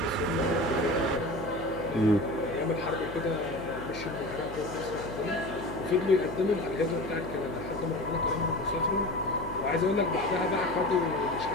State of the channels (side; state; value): left; noise; hum, 12 dB below the sound